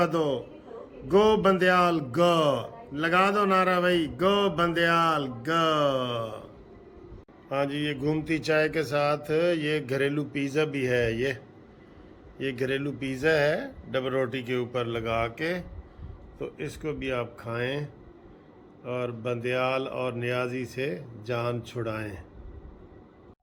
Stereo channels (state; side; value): identical; both; correlation 1.00